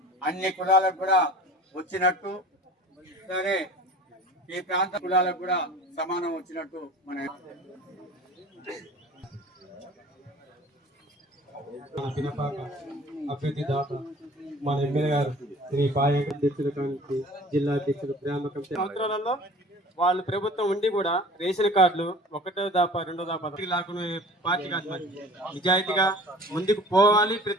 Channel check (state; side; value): normal; both; correlation 0.44